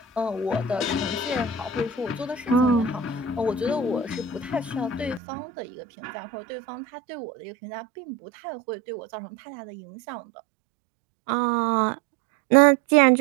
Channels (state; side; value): drops out; left; at 5.2 s